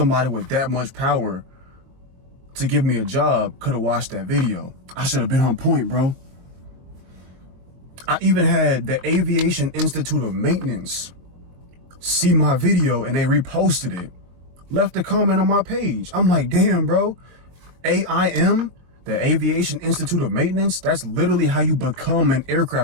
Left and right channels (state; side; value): late; left; 23 ms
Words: with that much power to give me a job could have watched that video. I should have been on point, bro. I even had the Aviation Institute of Maintenance see my video and they reposted it, left a comment on my page. I'm like, damn, bro. AIM, the Aviation Institute of Maintenance, that's literally how you become an